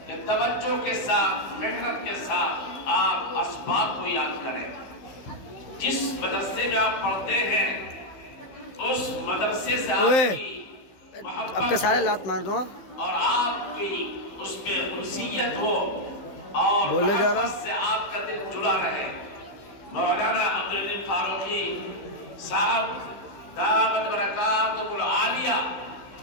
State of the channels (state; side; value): late; right; 16 ms